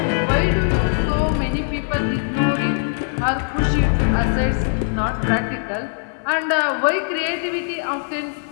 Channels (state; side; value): silent; right; 65 dB below the other